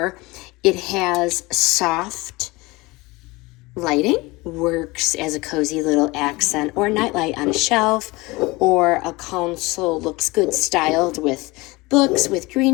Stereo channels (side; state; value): right; quieter; 22.7 dB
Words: It has soft lighting, works as a cozy little accent or nightlight on a shelf, or a console. Looks good styled with books, with